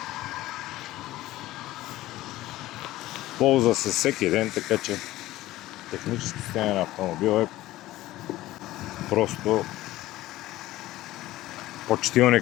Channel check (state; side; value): quieter; right; 16.3 dB